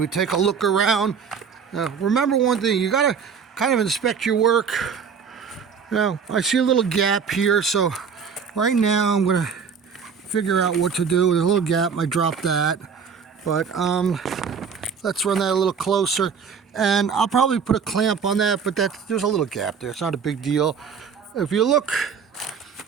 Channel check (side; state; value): left; quieter; 6.4 dB